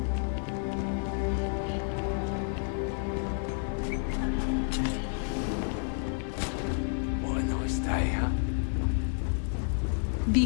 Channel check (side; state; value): right; silent; 58 dB below the other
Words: What a nice day, huh?